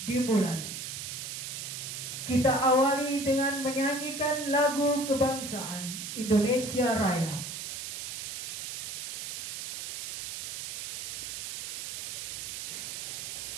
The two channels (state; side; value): noise; right; hiss, 5 dB below the sound